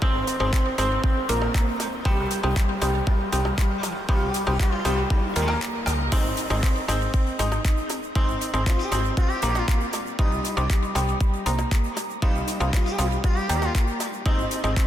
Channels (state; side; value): normal; both; correlation 0.86